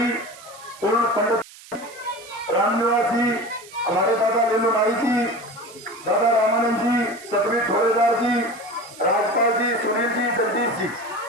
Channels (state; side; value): noise; right; hiss, 20 dB below the sound